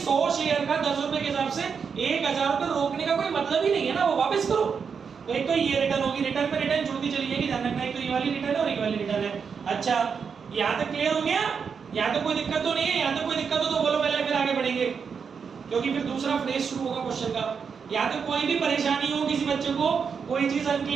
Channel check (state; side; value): quieter; left; 6.2 dB